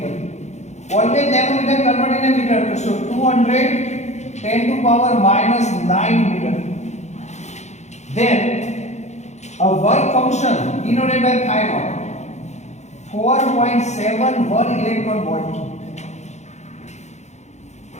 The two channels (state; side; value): late; right; 0.33 ms